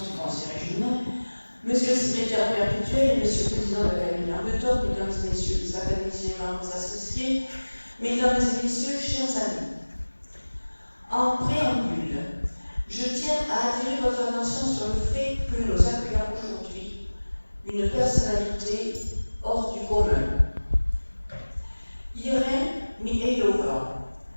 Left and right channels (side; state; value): both; inverted; correlation -1.00